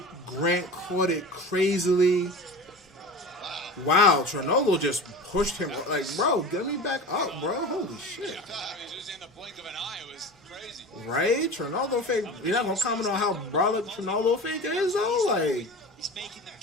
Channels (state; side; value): normal; both; correlation 0.33